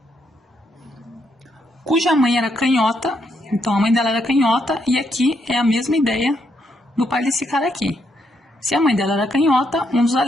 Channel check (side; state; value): both; normal; correlation 0.77